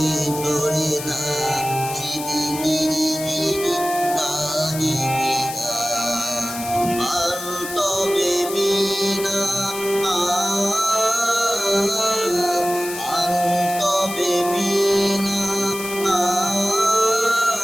ধরি নাচিবি ফিরি ফিরি গাহিবি গান। আন তবে বিনা তবে বিনা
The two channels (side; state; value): left; noise; hiss, 9 dB below the sound